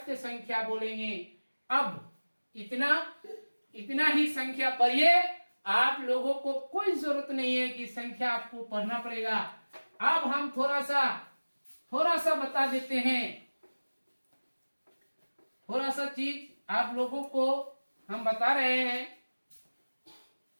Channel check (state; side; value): inverted; both; correlation -1.00